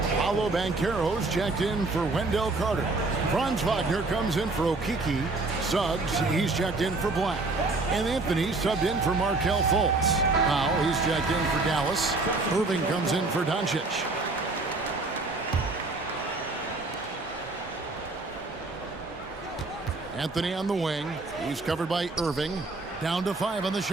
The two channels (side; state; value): left; quieter; 3.4 dB